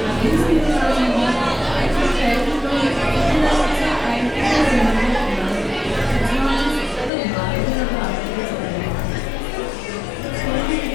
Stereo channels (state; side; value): drops out; right; at 7.1 s